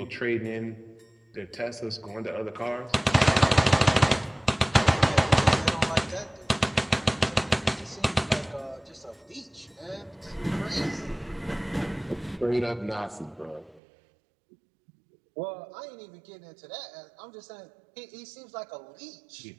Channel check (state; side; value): drops out; left; at 13.8 s